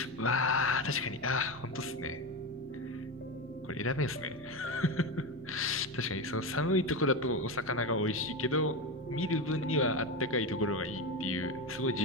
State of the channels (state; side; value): normal; both; correlation 0.17